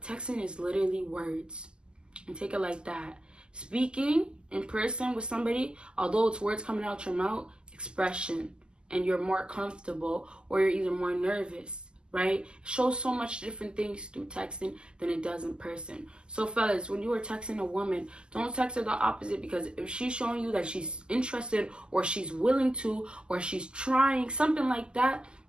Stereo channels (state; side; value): late; left; 0.048 ms